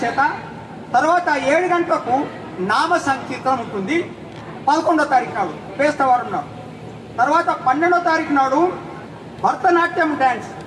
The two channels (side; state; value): both; identical; correlation 1.00